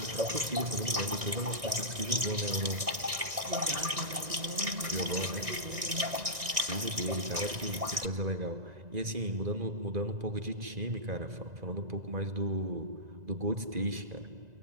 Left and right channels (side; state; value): left; late; 1.6 ms